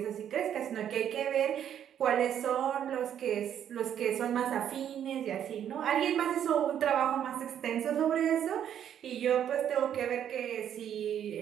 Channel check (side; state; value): left; quieter; 9.7 dB